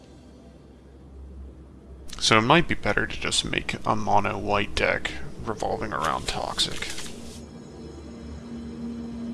So it might be better to just make a mono white deck revolving around Toxic.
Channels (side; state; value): both; identical; correlation 1.00